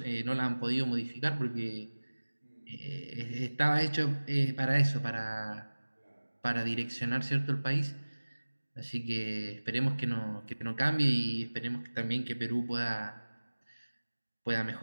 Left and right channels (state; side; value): inverted; both; correlation -1.00